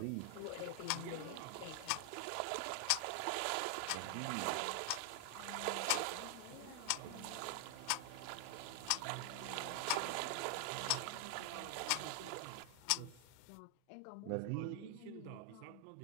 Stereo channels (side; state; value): both; different; correlation 0.00